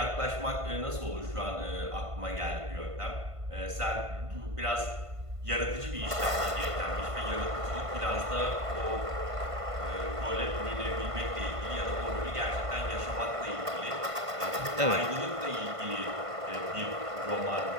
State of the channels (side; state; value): left; late; 1.5 ms